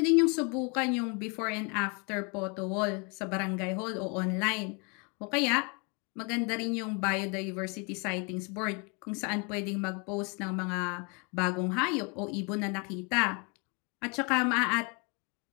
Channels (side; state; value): right; quieter; 33.0 dB